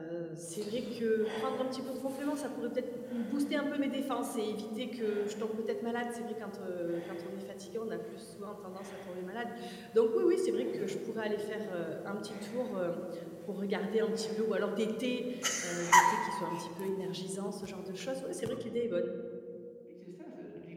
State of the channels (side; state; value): both; identical; correlation 1.00